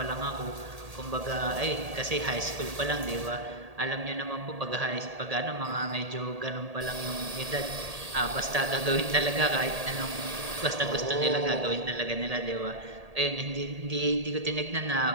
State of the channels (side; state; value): left; late; 1.8 ms